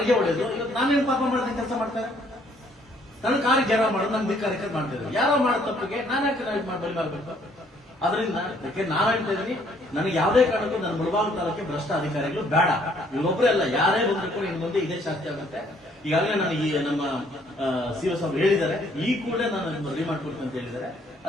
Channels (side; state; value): both; normal; correlation 0.64